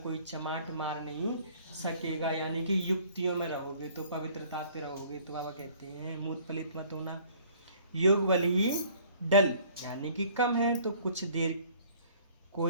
कोई चमाट मार नहीं सकेगा, यानी कि युक्तियों में रहोगे तो पवित्रता पे रहोगे। तो बाबा कहते हैं मूत पलित मत होना। योग बल ही डल यानी कि कम है, तो कुछ देर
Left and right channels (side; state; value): both; inverted; correlation -0.55